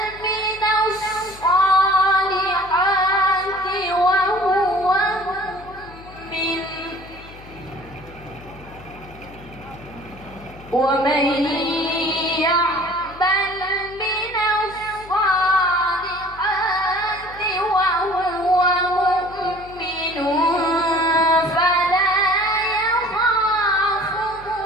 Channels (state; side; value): noise; left; hum, 20 dB below the sound